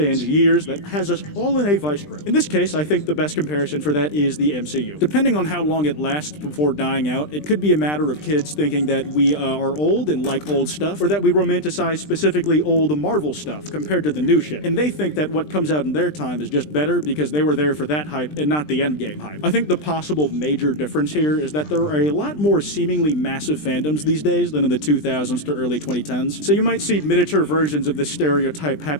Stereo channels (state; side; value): late; right; 20 ms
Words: years that has us all in a vice grip. In this case, I think the best comparison for that is the MCU. Depending on how long it lasts before dying out, it could be a matter of kids thinking that we are old and like old stuff, or that we romanticize specifically old Marvel stuff compared to the new shit. And they think that what comes out in their time is just better because they were there for that hype and not the endgame hype. I think the possible major difference here is that there are a lot more seemingly massive fandoms these days than in the 2000s to early 2010s. So you might see miniature versions of this stereotype